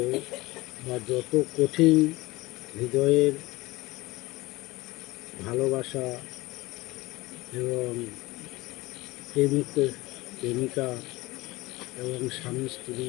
বা যত কঠিন হৃদয়ের ভালোবাসা এবং প্রেমিক প্রেমিকা এবং স্বামী স্ত্রী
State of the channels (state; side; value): quieter; right; 20.7 dB